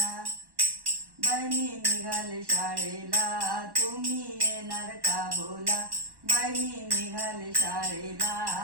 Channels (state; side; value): late; left; 1.1 ms